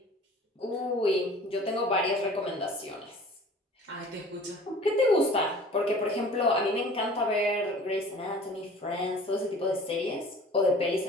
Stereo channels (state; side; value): normal; both; correlation 0.46